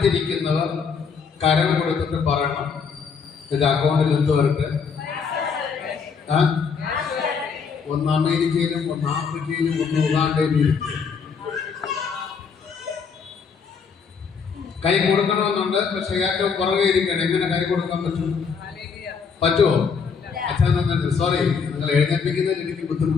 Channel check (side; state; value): right; quieter; 5.9 dB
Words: കരം കൊടുത്തിട്ട് പറയണം, ഇത് അക്കൗണ്ടിൽ എന്ത് വരട്ടെ. ഒന്ന് അമേരിക്കയിലും ഒന്ന് ആഫ്രിക്കയിലും ഒന്ന് ഉഗാണ്ടയിലും ഇരിക്കും. കൈ കൊടുക്കണമെന്നുണ്ട്, പക്ഷെ ഏറ്റവും പുറകെ ഇരിക്കണം. എങ്ങനെ കൈ കൊടുക്കാൻ പറ്റുമോ? അച്ഛൻ സോറി, നിങ്ങൾ എഴുന്നേൽപ്പിക്കുന്നതിൽ എനിക്ക്